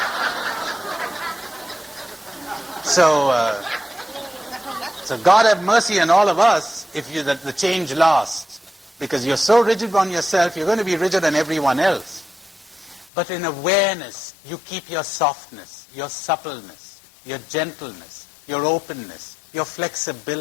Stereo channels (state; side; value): drops out; right; at 13.1 s